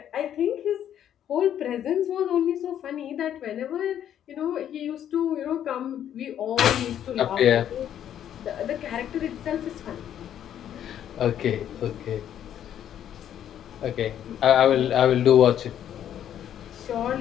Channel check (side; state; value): right; quieter; 10.3 dB